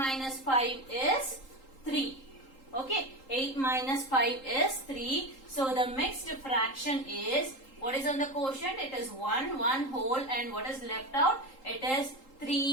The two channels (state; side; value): late; right; 3.8 ms